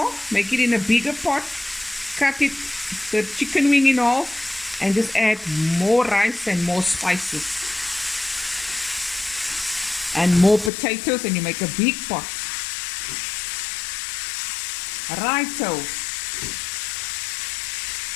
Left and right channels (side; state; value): right; drops out; at 10.7 s